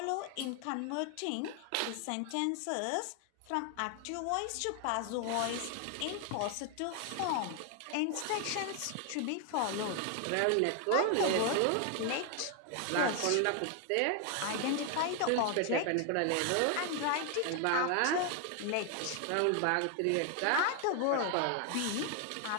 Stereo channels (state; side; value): different; both; correlation 0.01